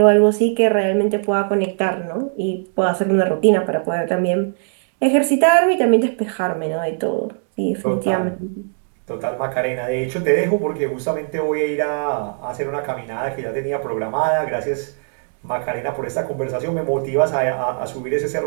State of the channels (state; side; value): silent; left; digital silence